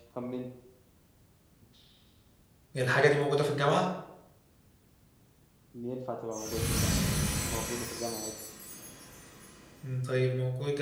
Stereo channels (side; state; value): both; identical; correlation 1.00